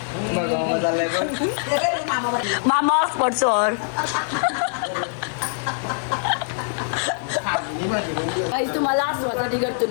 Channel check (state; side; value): silent; right; 63 dB below the other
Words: मामा हॉटस्पॉट सोड. काही तुम्हाला आसवासाठी करतो